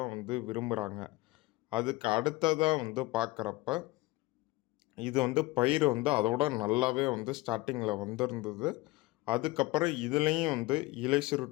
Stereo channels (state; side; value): quieter; right; 20.7 dB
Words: விரும்புகிறாங்க. அதுக்கு அடுத்ததாக பார்க்குறப்ப இது பயிர் அதோட நல்லாவே ஸ்டார்டிங்கில் வந்திருந்தது. அதுக்கப்புறம் இதுலேயும் இலை